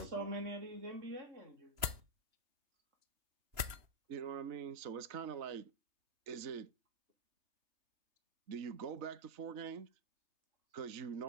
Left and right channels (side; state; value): left; late; 3.0 ms